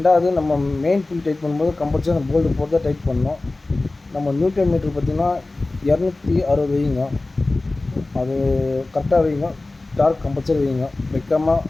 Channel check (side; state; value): right; quieter; 3.1 dB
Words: நம்ம மெயின் பின் டைட் பண்ணும்போது கம்பல்சரி அந்த போல்டு போட்டு தான் டைட் பண்ணணும். நம்ம நியூட்டன் மீட்டர் பார்த்திங்கன்னா 260 வைங்க. அது கரெக்டாக வைங்க. டார்க் கம்பல்சரி வைங்க. வைக்காமல்